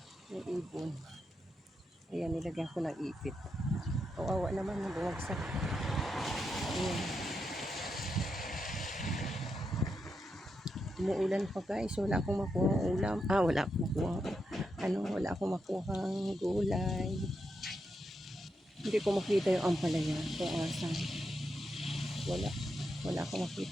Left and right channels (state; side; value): normal; both; correlation 0.84